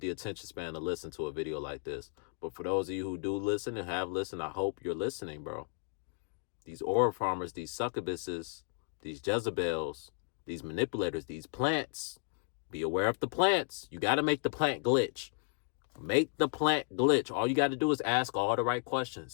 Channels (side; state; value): right; silent; 55 dB below the other